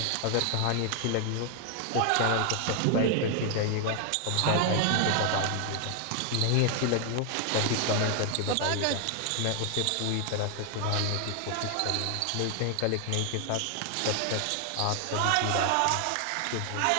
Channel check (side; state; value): both; different; correlation 0.00